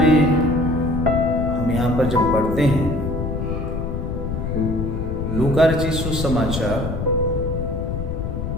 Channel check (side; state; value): left; noise; rumble, 3 dB below the sound